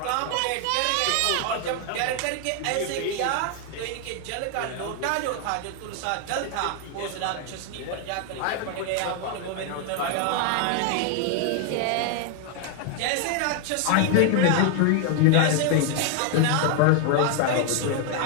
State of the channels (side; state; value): both; different; correlation 0.00